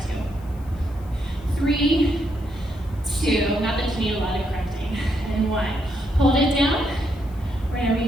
you. 3, 2. Not that you need a lot of correcting. And 1. Hold it down. We're going to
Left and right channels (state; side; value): noise; left; hiss, 28 dB below the sound